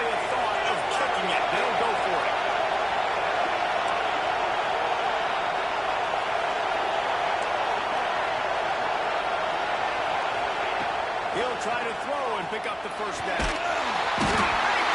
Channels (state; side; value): identical; both; correlation 1.00